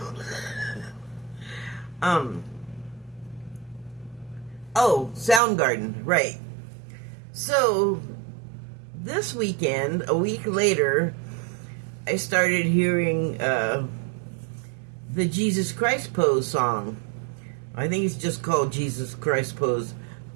Oh, Soundgarden, right. So, this weekend, a week later, I started hearing the Jesus Christ Pose song. I think it's just called Jesus Christ Pose.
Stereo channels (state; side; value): drops out; left; at 5.4 s